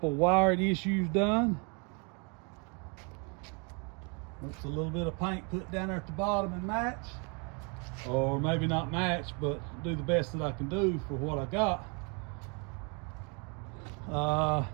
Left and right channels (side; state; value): left; quieter; 34.3 dB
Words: wiring issues done. Looks a little bit of paint put down there at the bottom and match. Or maybe not match, but do the best that I can do for what I got.